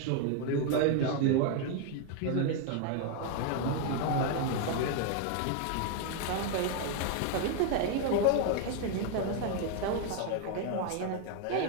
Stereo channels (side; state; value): both; different; correlation 0.00